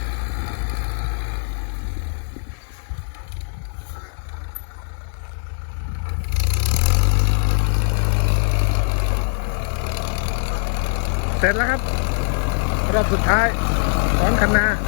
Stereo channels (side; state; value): right; silent; digital silence